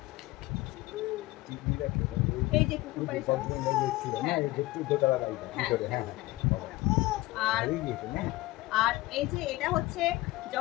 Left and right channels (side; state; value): right; quieter; 19.2 dB